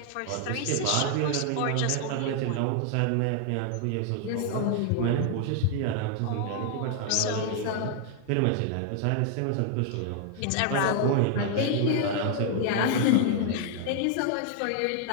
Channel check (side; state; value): both; different; correlation 0.00